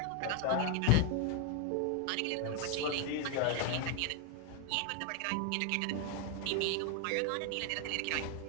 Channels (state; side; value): different; both; correlation 0.00